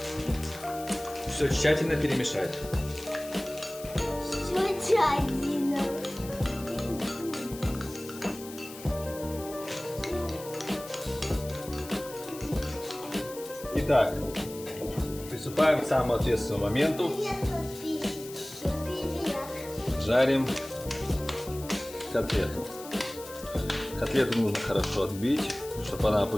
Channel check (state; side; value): noise; left; hiss, 15 dB below the sound